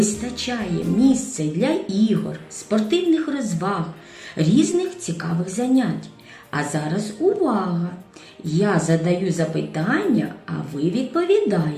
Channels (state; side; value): identical; both; correlation 1.00